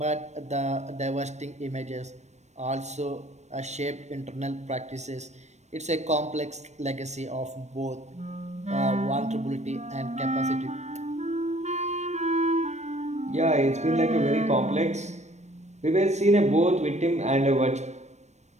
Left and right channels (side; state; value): left; late; 0.33 ms